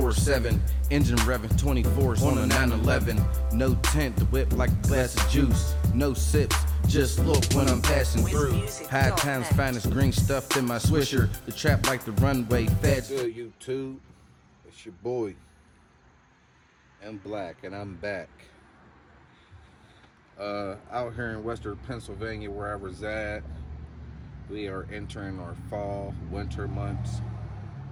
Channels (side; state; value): both; identical; correlation 1.00